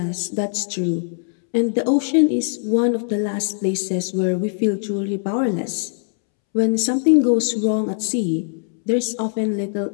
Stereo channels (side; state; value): right; silent; 65 dB below the other